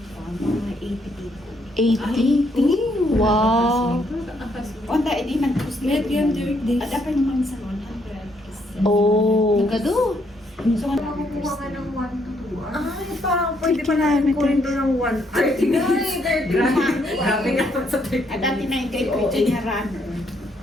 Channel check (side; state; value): both; normal; correlation 0.72